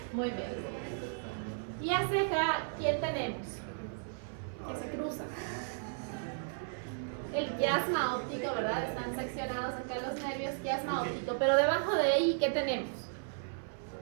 Muy bien. Y hacia acá, ¿quién tenemos? Que se cruza. El quiasma óptico, ¿verdad? Están seccionados acá los nervios, quiasma óptico. Pero debajo de ahí, ¿qué tenemos?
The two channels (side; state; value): left; silent; 55 dB below the other